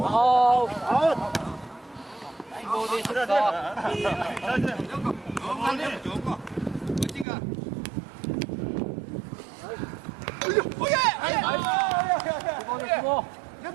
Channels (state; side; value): drops out; left; at 7.2 s